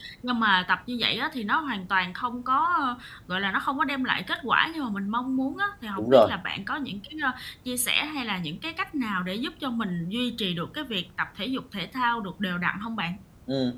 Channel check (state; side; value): identical; both; correlation 1.00